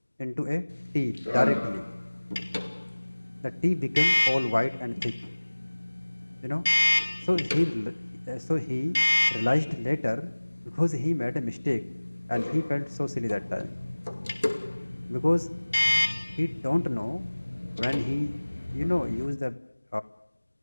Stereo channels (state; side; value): inverted; both; correlation -1.00